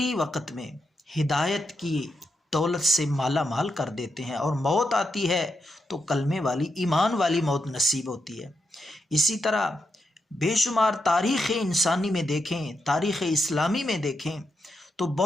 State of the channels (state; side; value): normal; both; correlation 0.85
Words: وقت میں ہدایت کی دولت سے مالا مال کر دیتے ہیں، اور موت آتی ہے تو کلمے والی، ایمان والی موت نصیب ہوتی ہے۔ اسی طرح بے شمار تاریخ انسانی میں دیکھیں، تاریخ اسلامی میں دیکھیں تو